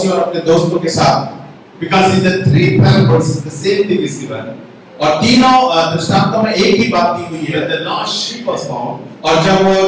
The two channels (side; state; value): both; identical; correlation 1.00